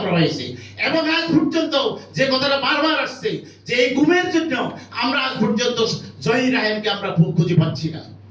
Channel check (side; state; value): both; identical; correlation 1.00